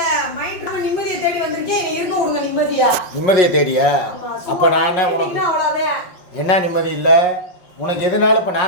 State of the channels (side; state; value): right; late; 5.5 ms